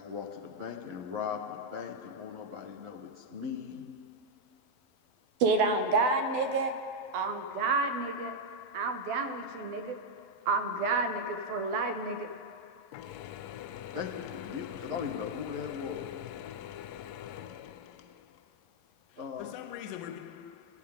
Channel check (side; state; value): left; late; 12 ms